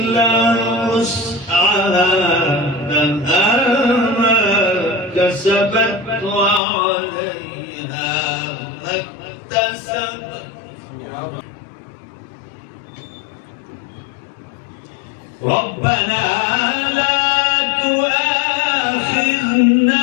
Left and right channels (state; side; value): drops out; right; at 6.6 s